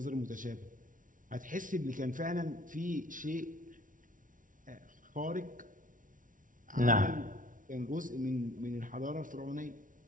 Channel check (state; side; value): late; left; 0.38 ms